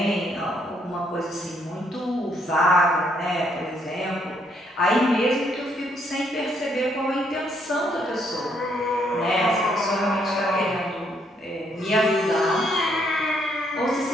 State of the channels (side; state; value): both; normal; correlation 0.71